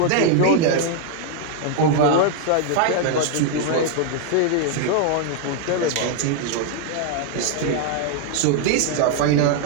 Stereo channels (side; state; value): both; different; correlation 0.00